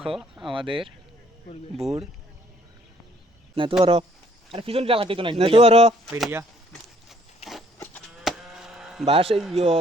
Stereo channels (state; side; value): normal; both; correlation 0.63